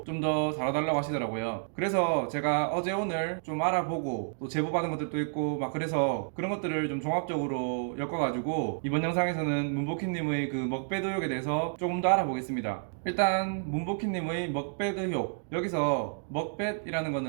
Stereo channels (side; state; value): left; silent; digital silence